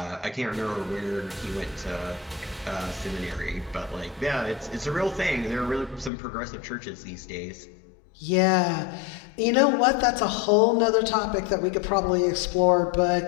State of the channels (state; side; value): drops out; right; at 6.1 s